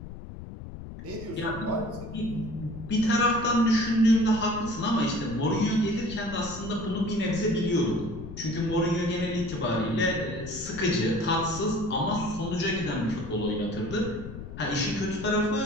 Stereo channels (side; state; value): left; noise; rumble, 12 dB below the sound